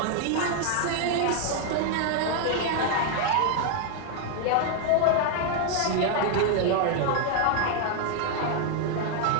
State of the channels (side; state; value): both; different; correlation 0.00